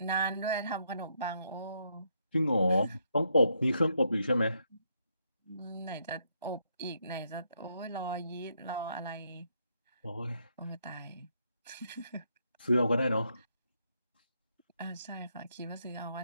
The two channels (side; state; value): both; inverted; correlation -0.76